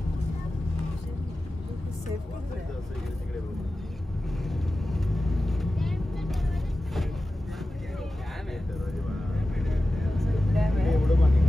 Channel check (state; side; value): normal; both; correlation 0.94